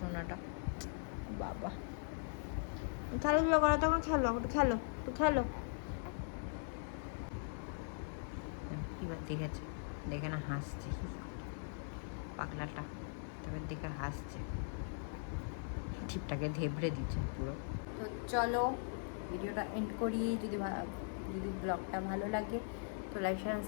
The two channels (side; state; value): right; silent; digital silence